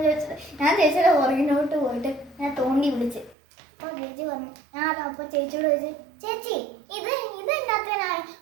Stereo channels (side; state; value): left; drops out; at 3.4 s